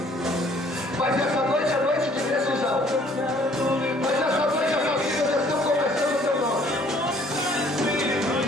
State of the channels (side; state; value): both; normal; correlation 0.59